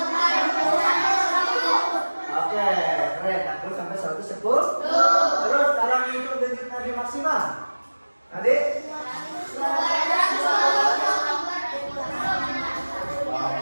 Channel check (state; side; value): inverted; both; correlation -1.00